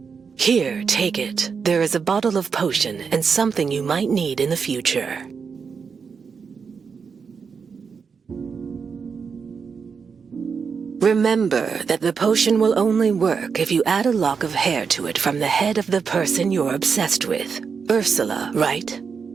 Here, take it. There is a bottle of potion and something you might need in the future. Remember that the potion will only work if you add a lock of hair to it from the head of the person you're obsessed with. Ursula, right?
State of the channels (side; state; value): left; quieter; 5.8 dB